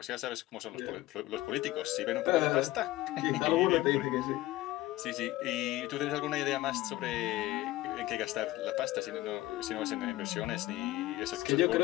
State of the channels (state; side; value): quieter; right; 17.1 dB